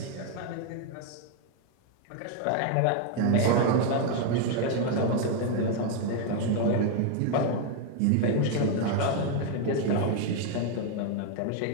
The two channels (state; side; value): different; both; correlation 0.01